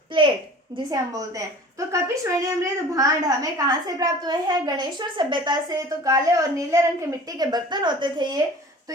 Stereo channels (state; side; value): normal; both; correlation 0.43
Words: प्लेट जिसे हम बोलते हैं। तो कपिशवरणी मृद भांड हमें कहाँ से प्राप्त हुए हैं? गणेश्वर सभ्यता से। तो काले और नीले रंग के मिट्टी के बर्तन होते थे ये, तो